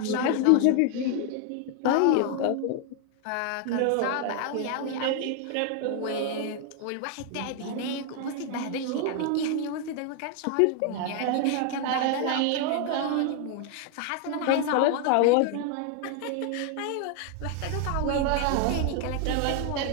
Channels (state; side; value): different; both; correlation 0.00